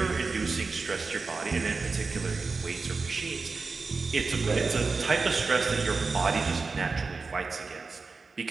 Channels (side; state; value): left; quieter; 4.3 dB